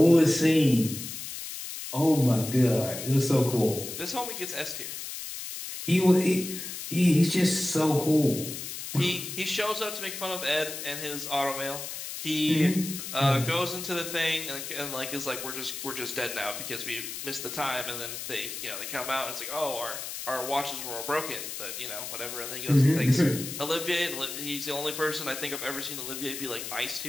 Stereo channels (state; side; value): noise; left; hiss, 7 dB below the sound